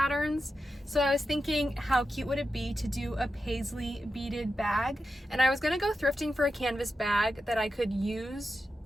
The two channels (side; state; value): both; normal; correlation 0.90